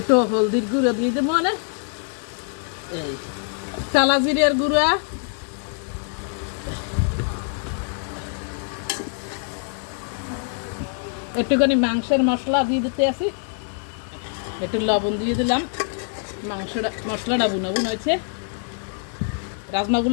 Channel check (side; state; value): right; silent; 56 dB below the other